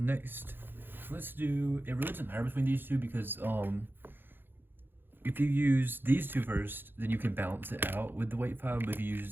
let's do, it really doesn't matter between these two because if you use these two first, then you can balance it out with the weight file, but if you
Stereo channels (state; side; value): late; left; 0.099 ms